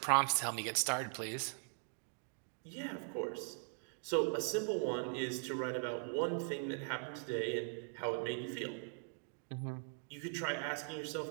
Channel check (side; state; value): left; silent; 51 dB below the other